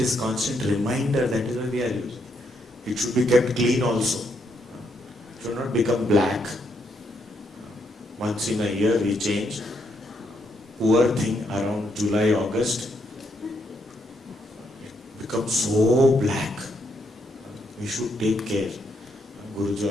constant reminder, that is why we are using. It should be kept clean also. It should not become black. Once in a year we change. Poor thing, around July, August, it becomes so black. We should take care. Guruji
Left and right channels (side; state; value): both; normal; correlation 0.76